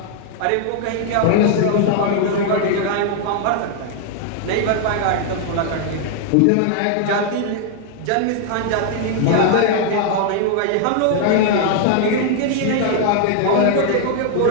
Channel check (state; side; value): different; both; correlation 0.00